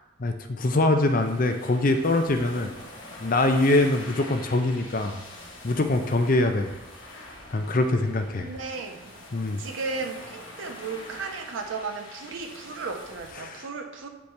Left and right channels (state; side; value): normal; both; correlation 0.48